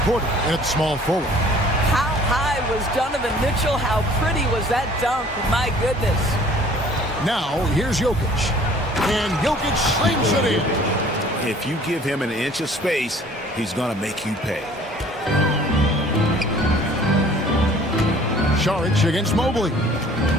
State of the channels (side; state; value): both; normal; correlation 0.52